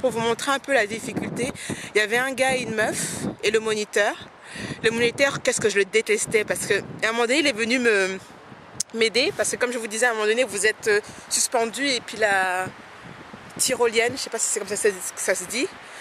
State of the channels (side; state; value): both; identical; correlation 1.00